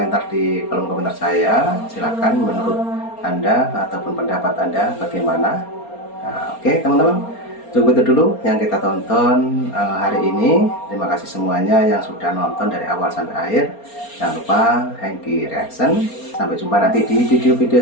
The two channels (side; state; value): right; late; 4.3 ms